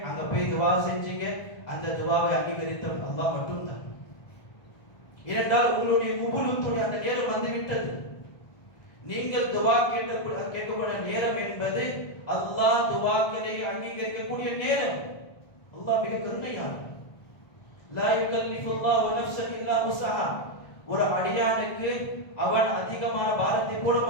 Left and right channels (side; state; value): right; late; 1.4 ms